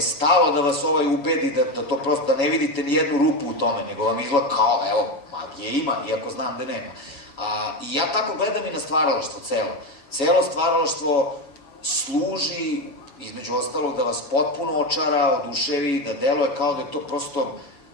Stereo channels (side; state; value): right; late; 7.1 ms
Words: stalo da vas ubedi da to prosto, da ne vidite ni jednu rupu u tome, nego vam izgleda kao, evo, magije ima, iako znam da nema. I ja tako gledam i na stvaralaštvo celo. Celo stvaralaštvo služi, između ostalog, da vas potpuno očara, oduševi, da deluje kao da je to prosto